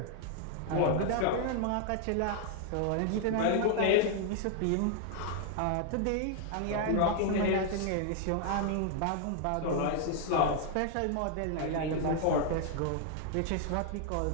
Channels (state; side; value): different; both; correlation 0.00